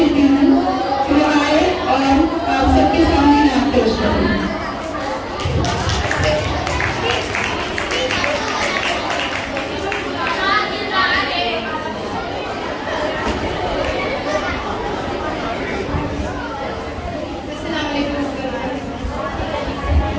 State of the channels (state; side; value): identical; both; correlation 1.00